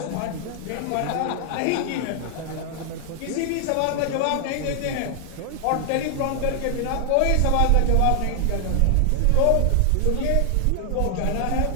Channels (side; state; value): both; different; correlation 0.00